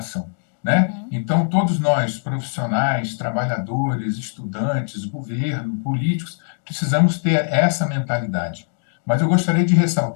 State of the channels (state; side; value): silent; right; digital silence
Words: né? Então, todos nós, profissionais, trabalhadores, estudantes, governo, políticos, precisamos ter essa mentalidade. Mas eu gostaria de